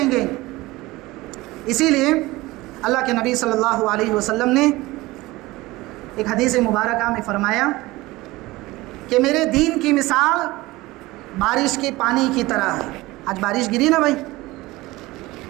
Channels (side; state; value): left; quieter; 19.9 dB